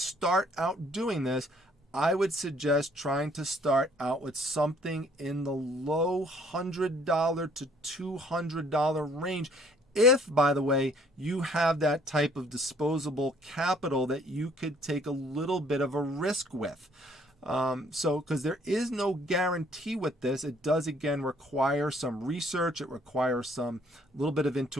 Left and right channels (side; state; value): both; normal; correlation 0.61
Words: out doing this, I would suggest trying to start out with something in the low $100 to $200 range. If, by the way, you have that type of disposable capital that you could take a little bit of a risk with. Because there is no guarantee with this. It does, again, require some research. It requires some little bit of